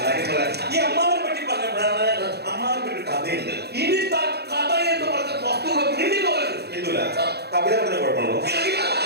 ഈ അമ്മാവനെ പറ്റി പറഞ്ഞപ്പോഴാണ് അമ്മാവനെ പറ്റി കഥയുണ്ട്. ഇനി കഥ എന്ന് പറഞ്ഞ വസ്തുക്കൾ ഇല്ല, കവിത പറഞ്ഞ കുഴപ്പമുണ്ടോ?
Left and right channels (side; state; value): left; late; 0.48 ms